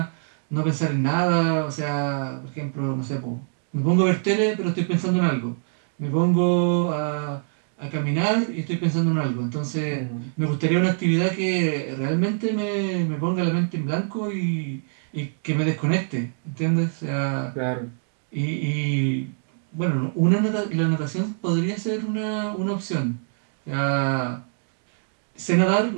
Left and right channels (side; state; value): left; silent; digital silence